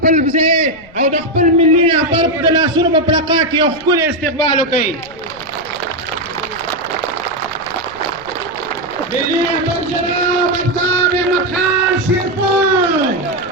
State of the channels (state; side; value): noise; left; rumble, 24 dB below the sound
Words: ځای او د خپل ملي رهبر د لاسونو په پړقا کې یو ښکلی استقبال وکړئ. ملي رهبر جناب افتاب احمد خان شیرپور.